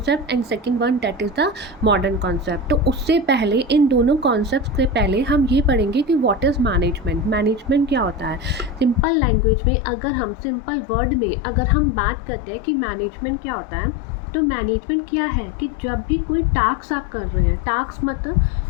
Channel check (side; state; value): right; drops out; at 9.1 s